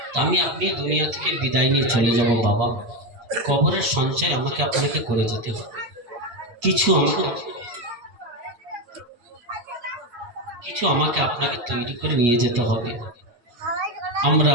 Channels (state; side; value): late; left; 8.4 ms